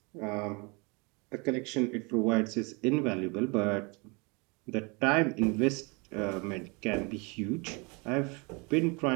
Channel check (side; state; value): left; quieter; 29.8 dB